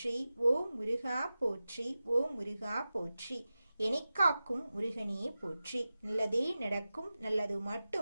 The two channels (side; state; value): both; inverted; correlation -0.95